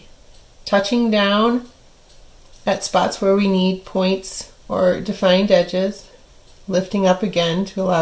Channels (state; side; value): identical; both; correlation 1.00